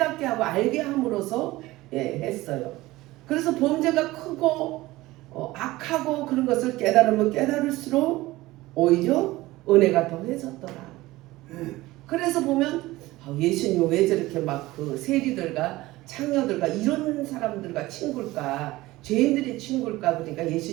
하고 알게 함으로써 했어요. 그래서 범죄가 크고 악하고 그런 것을 깨달으면 깨달을수록 오히려 은혜가 더해졌더라. 그래서 보면 예수님 왜 저렇게 막 그 세리들과 창녀들과 이런 사람들과 친구일까? 죄인들의 친구일까? 그러니까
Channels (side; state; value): left; quieter; 18.5 dB